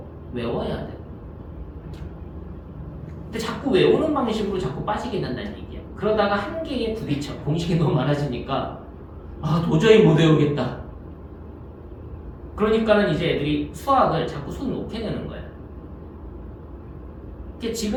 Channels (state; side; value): identical; both; correlation 1.00